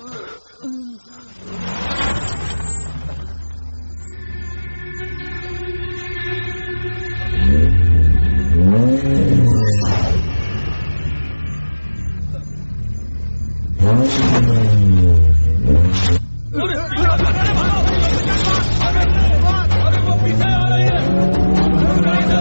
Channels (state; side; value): inverted; both; correlation -1.00